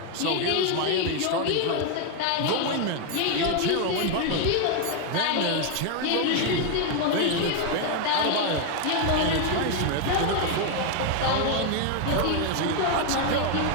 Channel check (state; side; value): different; both; correlation 0.01